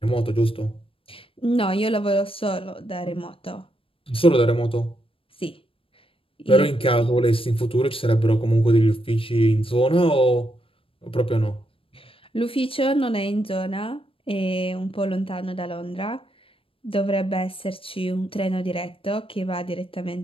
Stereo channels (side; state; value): right; late; 0.26 ms